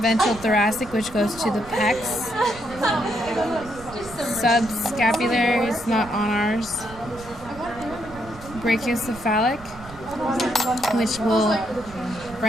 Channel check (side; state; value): right; noise; rumble, 17 dB below the sound